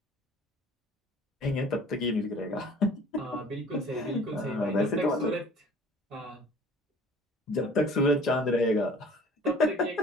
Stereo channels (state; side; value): normal; both; correlation 0.49